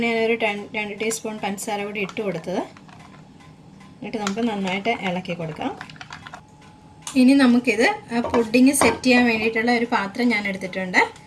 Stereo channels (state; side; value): identical; both; correlation 1.00